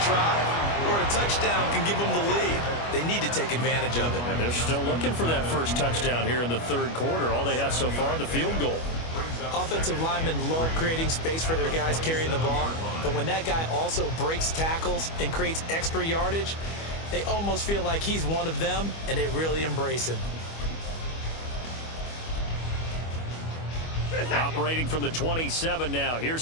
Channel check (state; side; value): late; right; 25 ms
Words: drive where a touchdown can give them the lead. They need to take advantage of it. And they're still looking for that 1st touchdown here in the 3rd quarter. All they have so far, the field goal. Offensive linemen love creating space for their guys carrying the ball, but when that guy also breaks tackles and creates extra yardage, they almost feel like he's one of them, and they really embrace him. Operating from the 27 now.